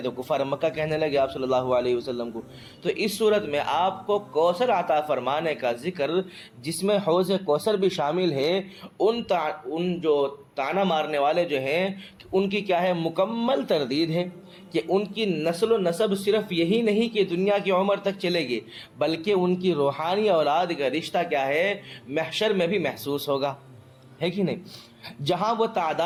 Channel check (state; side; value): identical; both; correlation 1.00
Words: تو کفار مکہ کہنے لگے آپ صلی اللہ علیہ وسلم کو۔ تو اس صورت میں آپ کو کوثر عطا فرمانے کا ذکر جس میں حوض کوثر بھی شامل ہے، ان جو طعنہ مارنے والے جو ہیں ان کی کیا ہے مکمل تردید ہے کہ ان کی نسل و نسب صرف یہی نہیں کہ دنیا کی عمر تک چلے گی، بلکہ ان کی روحانی اولاد کا رشتہ کیا ہے محشر میں بھی محسوس ہوگا، ہے کہ نہیں؟ جہاں وہ